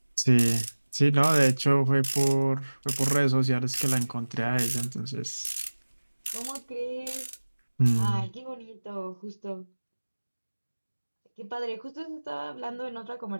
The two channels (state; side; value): inverted; both; correlation -1.00